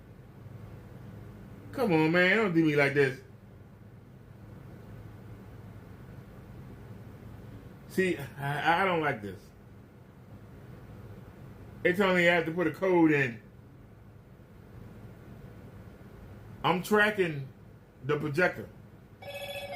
Come on, man. Don't do me like this. See, I don't like this. They tell me I have to put a code in. I'm tracking the projector.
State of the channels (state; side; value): identical; both; correlation 1.00